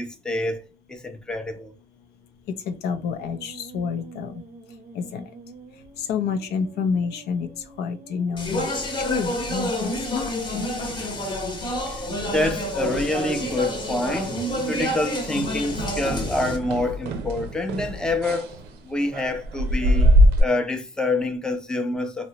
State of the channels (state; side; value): normal; both; correlation 0.65